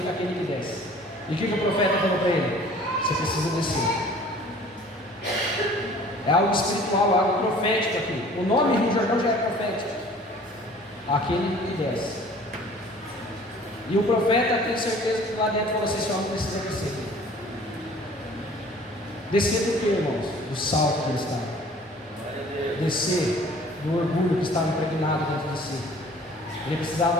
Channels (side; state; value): both; normal; correlation 0.50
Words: aquele que desce. E o que o profeta falou para ele? Você precisa descer. É algo espiritual, algo profético aqui. O nome Rio Jordão já é profético. Aquele que desce. E o profeta tem certeza que lá dentro falou assim: esse homem precisa descer. Descer do que, irmãos? Do salto que ele estava. Descer do orgulho que estava impregnado dentro de si. Ele